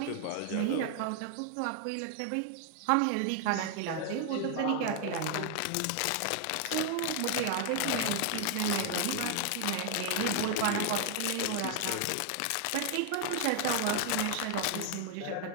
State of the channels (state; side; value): different; both; correlation 0.00